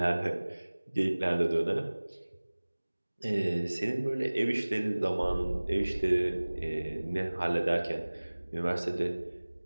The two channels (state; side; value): inverted; both; correlation -1.00